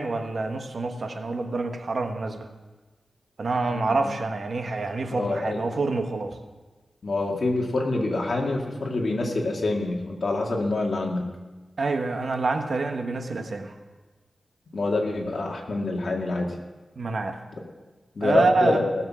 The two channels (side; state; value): both; normal; correlation 0.90